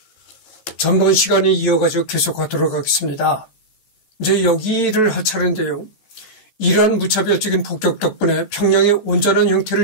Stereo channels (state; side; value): late; right; 14 ms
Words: 전번 시간에 이어가지고 계속하도록 하겠습니다. 이제 여기를 할 차례인데요. 이러한 무차별적인 폭격 덕분에 평양의 온전한